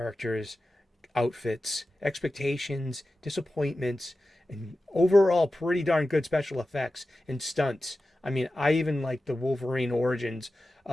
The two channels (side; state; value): both; normal; correlation 0.94